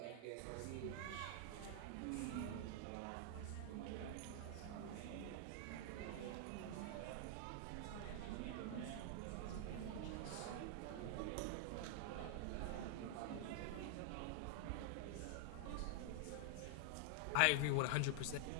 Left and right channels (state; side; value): different; both; correlation 0.00